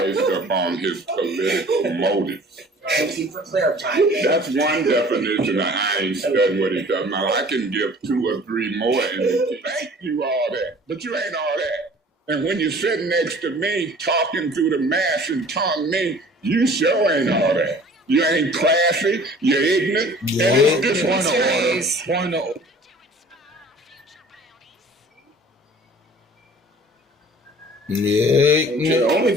upon his political motives. Thank you for clarifying. That's one definition of I ain't studying what he does. Now, I can give 2 or 3 more and thank you all that, but you ain't all that. And when you're sitting next to me, talking through the mask and tongue me, you sure ain't all that. You ain't classy, you're ignorant, and it's disrespectful. Point of order. Yeah. Okay, the only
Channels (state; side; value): normal; both; correlation 0.48